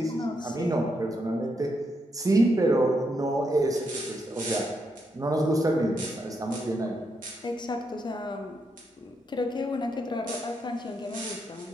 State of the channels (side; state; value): both; normal; correlation 0.80